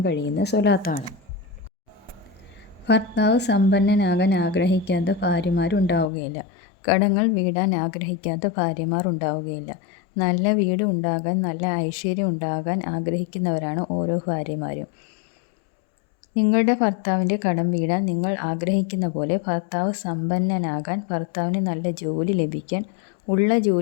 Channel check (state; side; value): drops out; right; at 6.1 s